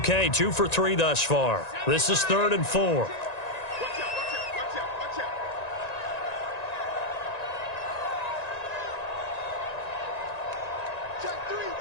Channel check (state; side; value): late; right; 1.9 ms